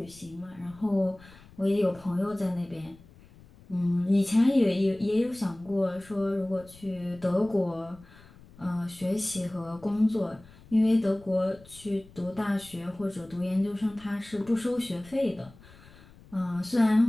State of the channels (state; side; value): noise; left; rumble, 23 dB below the sound